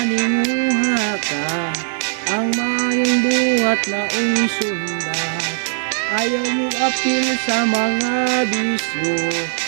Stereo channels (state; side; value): silent; left; 66 dB below the other